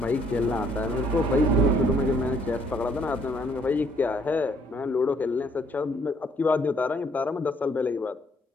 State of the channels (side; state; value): both; normal; correlation 0.66